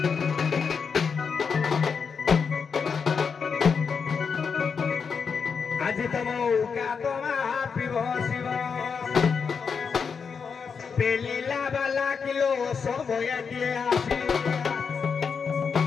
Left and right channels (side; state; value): right; quieter; 5.9 dB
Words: আজি তমৌকা তোমা পিব শিব পেলিলা বালা কিলো সময়ে দিয়ে আসি